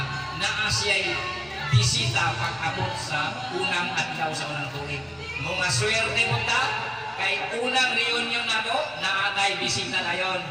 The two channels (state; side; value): identical; both; correlation 1.00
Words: naa siya'y bisita pag-abot sa unang adlaw sa unang tuig. Mga swerte mo ta, kay unang reunion na to, naatay bisita na yun.